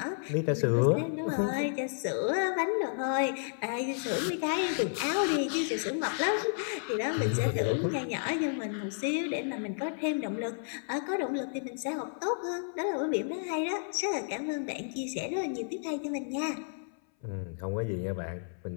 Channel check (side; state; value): right; silent; 57 dB below the other